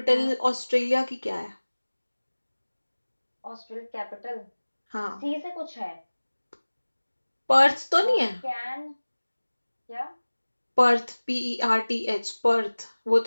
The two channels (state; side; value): inverted; both; correlation -1.00